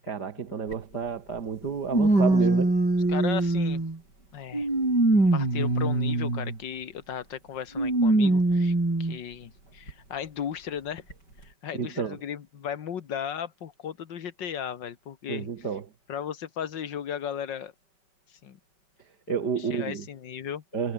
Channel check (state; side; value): late; right; 5.5 ms